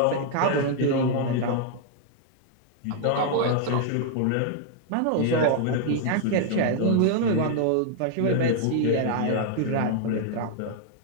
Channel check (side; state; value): both; different; correlation 0.00